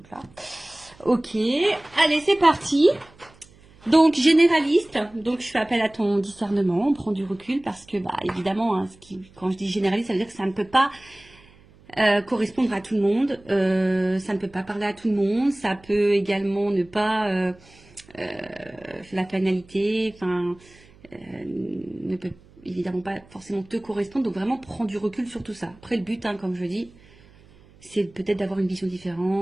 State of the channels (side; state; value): right; noise; hum, 26 dB below the sound